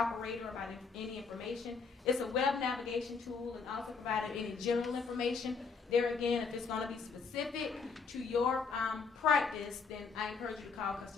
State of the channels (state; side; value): quieter; right; 5.2 dB